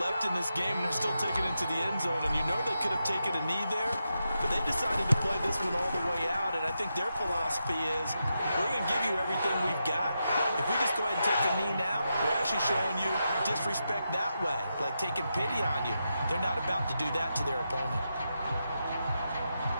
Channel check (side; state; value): both; inverted; correlation -0.86